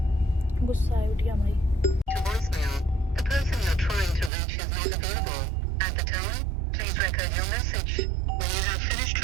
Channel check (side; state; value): left; drops out; at 4.3 s